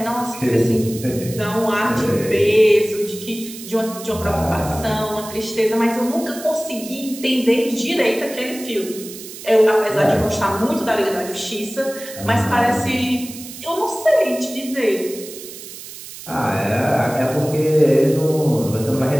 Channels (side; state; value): right; noise; hiss, 14 dB below the sound